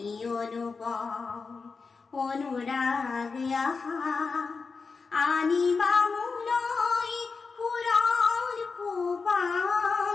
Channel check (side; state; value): right; quieter; 4.7 dB